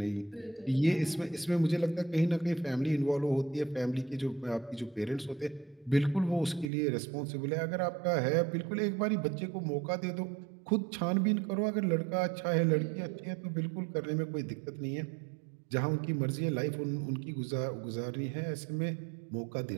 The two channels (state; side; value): drops out; left; at 6.7 s